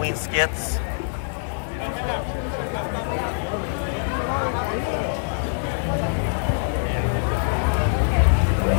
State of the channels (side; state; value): right; silent; digital silence